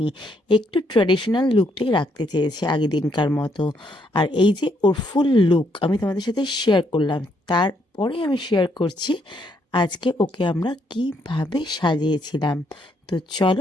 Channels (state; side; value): normal; both; correlation 0.73